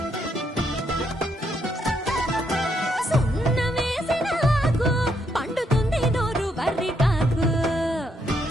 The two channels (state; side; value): normal; both; correlation 0.76